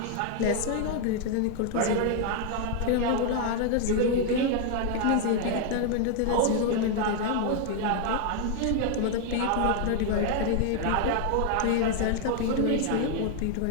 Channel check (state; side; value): different; both; correlation 0.00